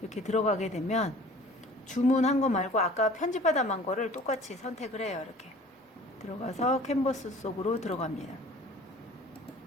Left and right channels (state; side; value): normal; both; correlation 0.47